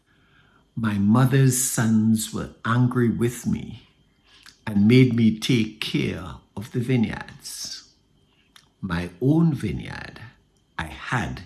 "My mother's sons were angry with me and made me take care of the vineyards. My own vineyard I had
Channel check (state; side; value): identical; both; correlation 1.00